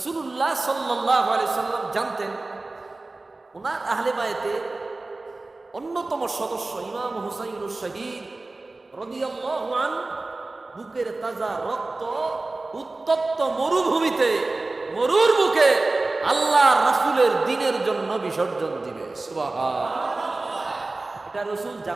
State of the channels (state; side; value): quieter; left; 3.2 dB